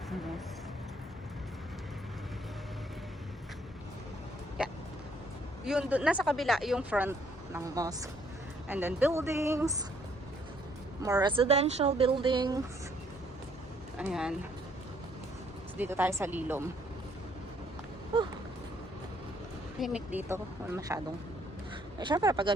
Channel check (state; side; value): normal; both; correlation 0.66